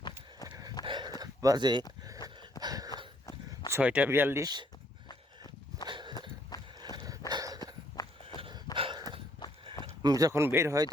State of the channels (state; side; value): normal; both; correlation 0.67